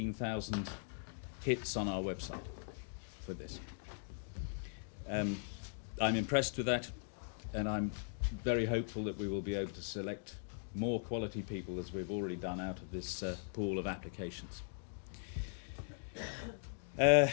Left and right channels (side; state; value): right; silent; digital silence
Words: hits on our website for this. I'm impressed with that, and I'm very hopeful that we will be able to select more quality people, as we've already done, out of this pool of applications.